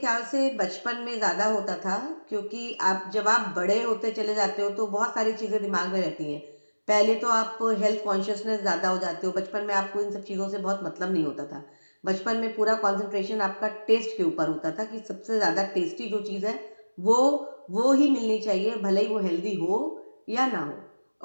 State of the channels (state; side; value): inverted; both; correlation -1.00